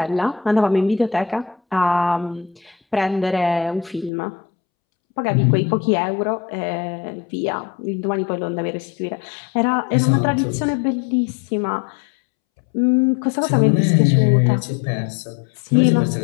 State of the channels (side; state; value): right; drops out; at 4.1 s